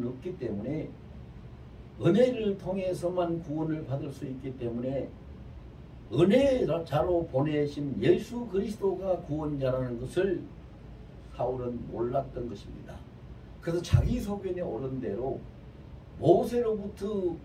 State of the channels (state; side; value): identical; both; correlation 1.00